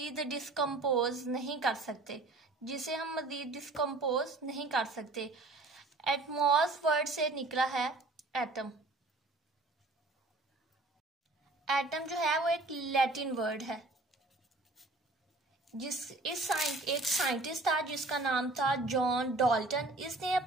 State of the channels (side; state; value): left; quieter; 3.0 dB